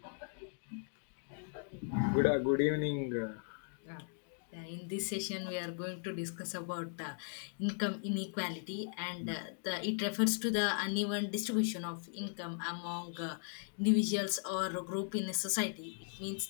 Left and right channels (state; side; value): silent; right; digital silence